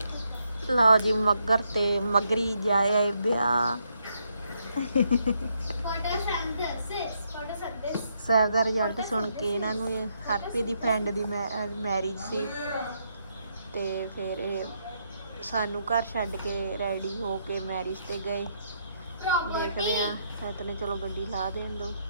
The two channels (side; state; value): both; inverted; correlation -0.76